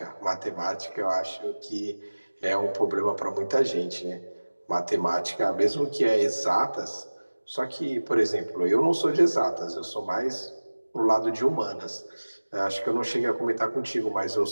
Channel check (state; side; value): inverted; both; correlation -1.00